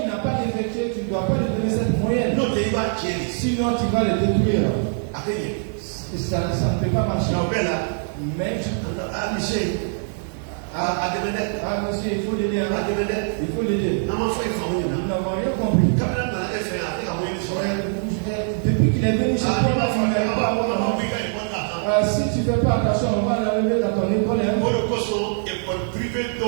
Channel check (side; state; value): left; silent; 60 dB below the other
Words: n'a pas effectué, tu ne dois pas lui donner cette moyenne. Sinon tu vas le détruire. Ça ne peut pas marcher. Mais monsieur, il faut l'aider. Il faut l'aider. Nous n'avons rien compris. Depuis qu'il est venu chez toi, si tu ne fais pas attention, on va l'enlever dans ton école.